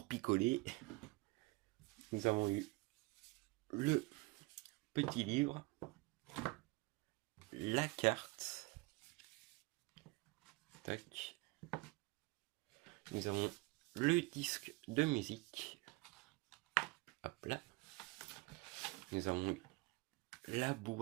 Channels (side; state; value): left; quieter; 24.0 dB